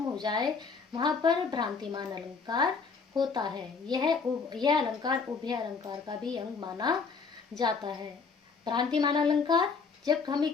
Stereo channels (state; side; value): quieter; right; 5.0 dB